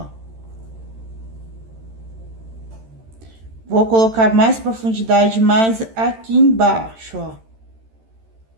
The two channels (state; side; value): late; left; 13 ms